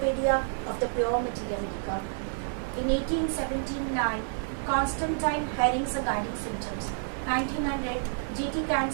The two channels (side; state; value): left; silent; digital silence